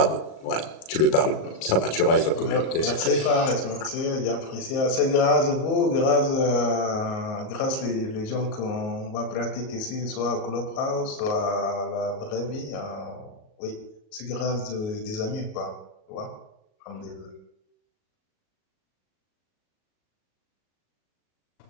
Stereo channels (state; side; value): late; right; 37 ms